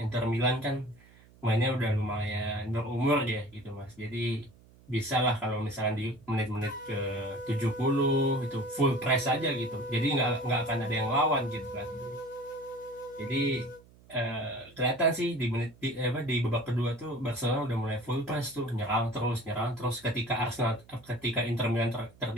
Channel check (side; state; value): right; noise; hum, 26 dB below the sound